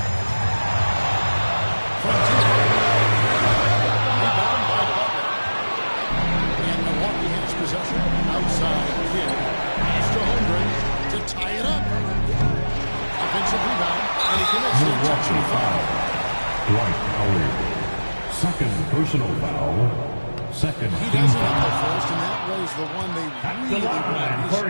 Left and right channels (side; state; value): both; inverted; correlation -1.00